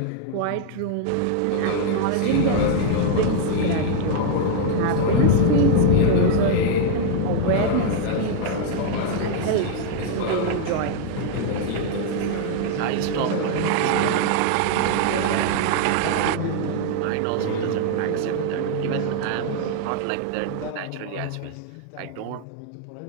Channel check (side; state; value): both; different; correlation 0.00